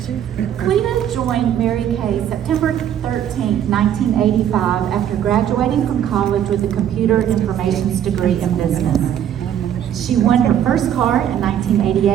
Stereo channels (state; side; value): quieter; left; 10.1 dB